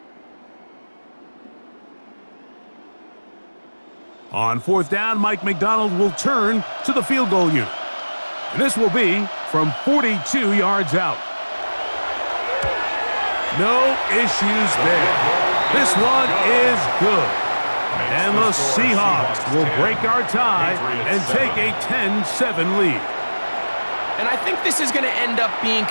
On 4th down, Mike McDonald will turn to the field goal unit. And this will be from 42 yards out. No issues there. This one is good. And the Seahawks will break our tie and take a 10-7 lead. And I think this is going to end up being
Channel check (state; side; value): inverted; both; correlation -1.00